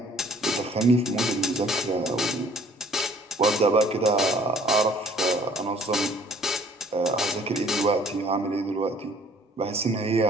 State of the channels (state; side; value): normal; both; correlation 0.56